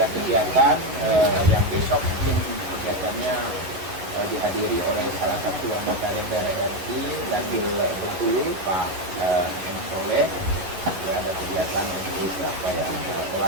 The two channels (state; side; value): late; left; 11 ms